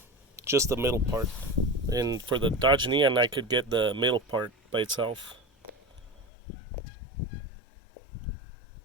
just the middle part. And for the Dodge Neon, I could get the middle part by itself.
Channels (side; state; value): right; drops out; at 6.2 s